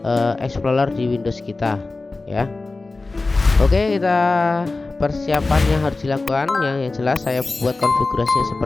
Explorer di Windows kita. Ya, oke, kita persiapannya harus dilakukan. Yang jelas saya buat konfigurasinya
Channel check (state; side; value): quieter; right; 3.5 dB